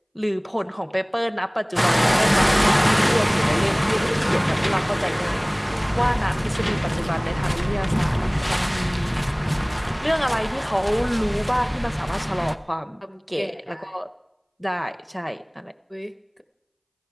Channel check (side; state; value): both; identical; correlation 1.00